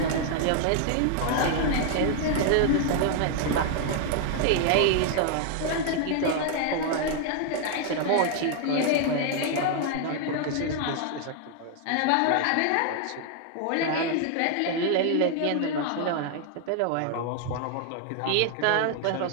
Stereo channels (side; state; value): both; different; correlation 0.00